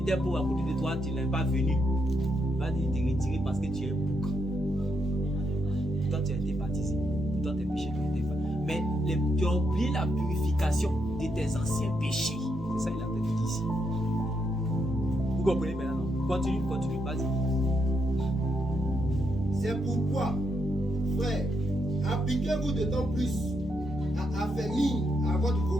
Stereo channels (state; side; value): normal; both; correlation 0.79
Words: pauvre à côté de toi, tu n'es pas venu. Il va te retirer parce que tu es bouc. Pourtant, tu as été baptisé. Pourtant, tes péchés ont été faits. Mais tu as oublié la purification de tes anciens péchés. C'est ça qu'il a dit ici. Vous comprenez maintenant? Continue, vas-y. C'est pourquoi, frère, appliquez-vous d'autant plus à affermir à votre